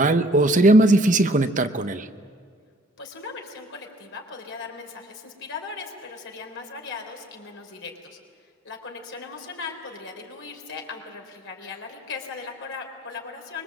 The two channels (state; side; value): normal; both; correlation 0.58